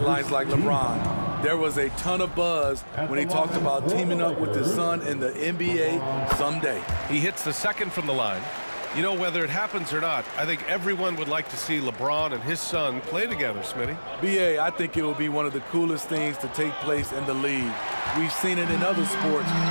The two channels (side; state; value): both; inverted; correlation -1.00